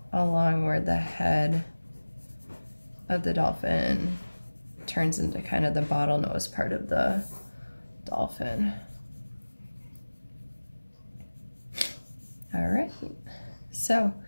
along where the head of the dolphin turns into kind of the bottlenose part of the dolphin. All right, so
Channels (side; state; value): both; inverted; correlation -1.00